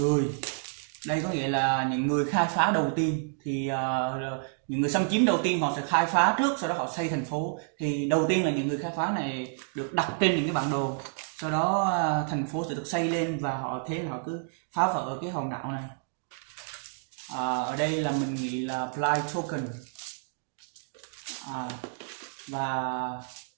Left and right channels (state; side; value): silent; left; digital silence